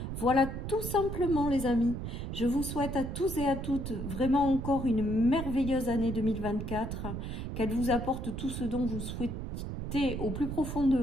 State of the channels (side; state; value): right; noise; rumble, 5 dB below the sound